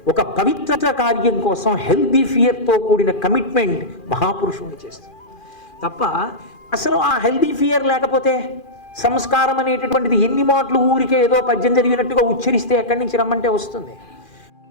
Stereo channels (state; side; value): late; right; 2.4 ms